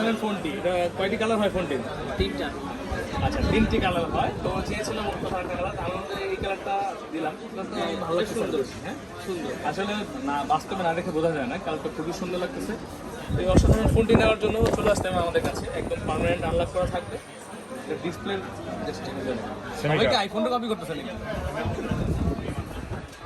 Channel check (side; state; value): both; identical; correlation 1.00